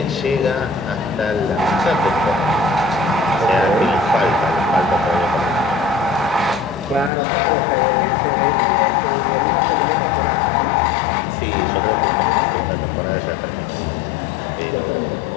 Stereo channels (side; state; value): right; drops out; at 7.1 s